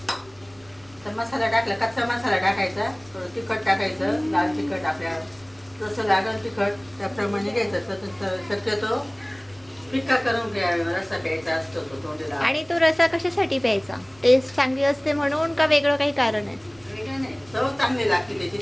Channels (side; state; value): right; noise; rumble, 28 dB below the sound